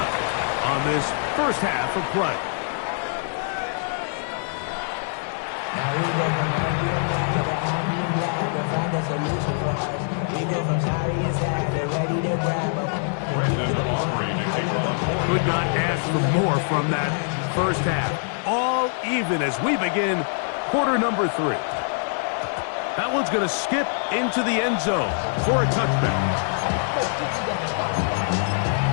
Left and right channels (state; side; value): silent; right; digital silence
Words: on this first half of play. Now we go from happy and glad to find a solution for us. We go from sorry and sad to ready to grab a... Could not ask for more from that first half. All even as we begin quarter number 3. That one's going to skip into the end zone for a touchback.